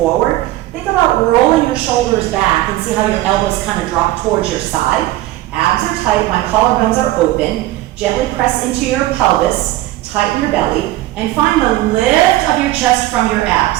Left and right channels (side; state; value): left; quieter; 16.3 dB